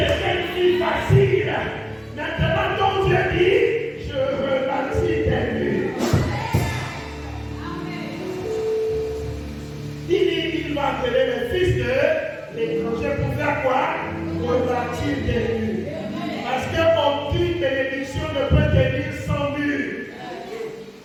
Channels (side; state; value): both; identical; correlation 1.00